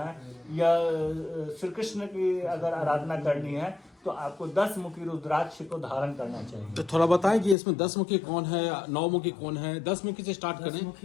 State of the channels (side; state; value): right; drops out; at 7.6 s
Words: या श्री कृष्ण की अगर आराधना करनी है तो आपको 10 मुखी रुद्राक्ष को धारण करना चाहिए। तो थोड़ा बताएं कि इसमें 10 मुखी कौन है, 9 मुखी कौन है? 10 मुखी से स्टार्ट करें। 10